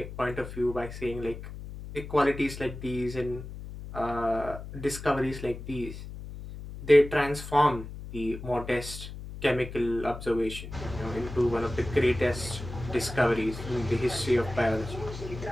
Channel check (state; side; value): noise; left; hum, 11 dB below the sound